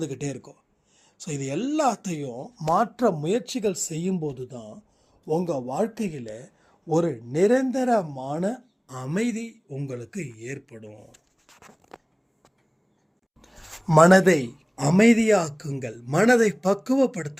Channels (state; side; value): identical; both; correlation 1.00